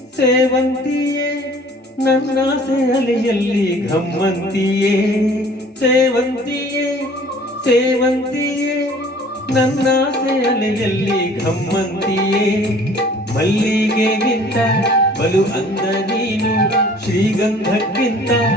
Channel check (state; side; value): normal; both; correlation 0.51